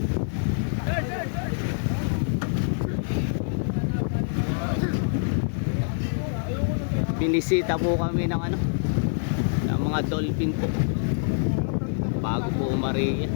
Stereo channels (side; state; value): right; silent; digital silence